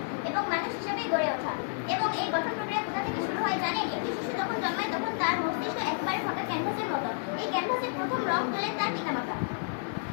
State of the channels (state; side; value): silent; right; 58 dB below the other